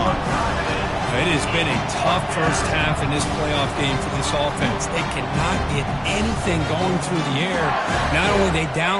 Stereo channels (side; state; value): both; identical; correlation 1.00